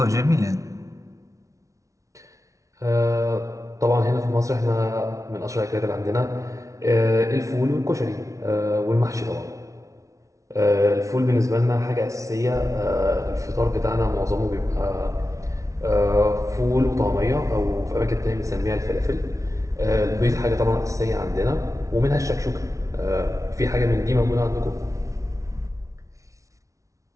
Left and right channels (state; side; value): late; left; 0.15 ms